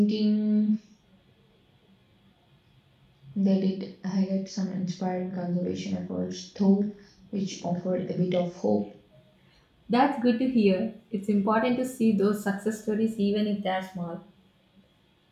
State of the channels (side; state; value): both; identical; correlation 1.00